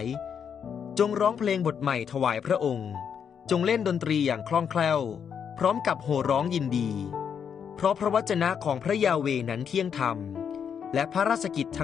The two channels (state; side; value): quieter; right; 7.5 dB